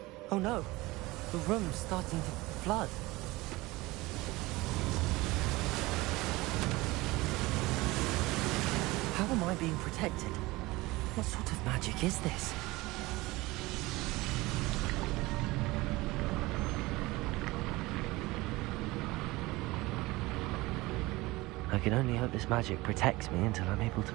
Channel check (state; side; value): quieter; left; 20.8 dB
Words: Oh no, the room's starting to flood. How am I being protected? What sort of magic is this? I can only hope this magic protects me until I'm able